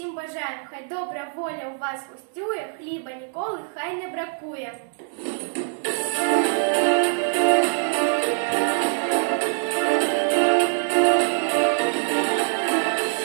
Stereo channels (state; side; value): silent; left; digital silence